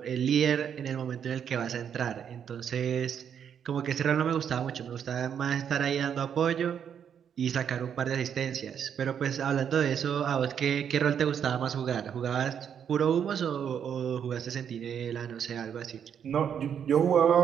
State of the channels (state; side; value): quieter; left; 8.2 dB